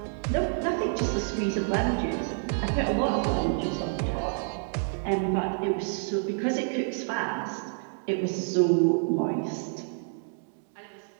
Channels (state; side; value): silent; left; 59 dB below the other